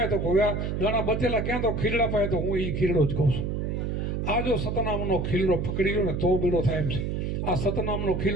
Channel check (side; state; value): right; noise; hum, 1 dB below the sound